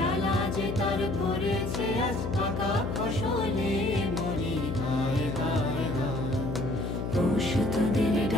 যে তার পড়েছে আজ পাকা ফসলে মরি হায় হায় হায়। পৌষ তোদের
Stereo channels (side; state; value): left; noise; hum, 3 dB below the sound